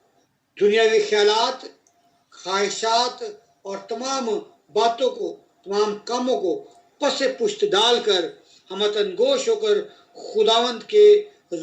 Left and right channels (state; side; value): identical; both; correlation 1.00